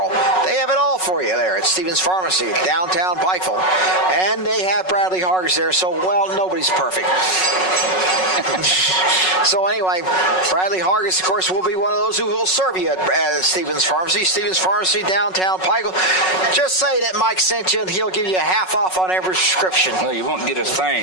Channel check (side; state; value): right; late; 5.4 ms